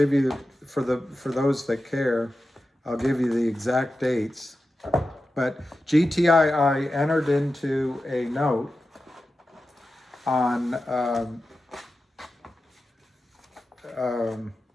you, for those that care, I'll give you the exact dates. But GTII entered into a note on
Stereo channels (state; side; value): normal; both; correlation 0.92